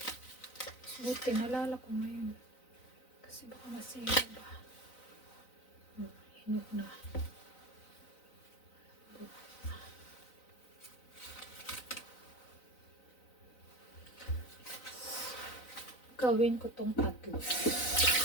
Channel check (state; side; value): late; right; 4.0 ms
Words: Buti, nalala ko ngayon. Kasi baka masira ba. Hinog na. Gawin ko tong tatlo.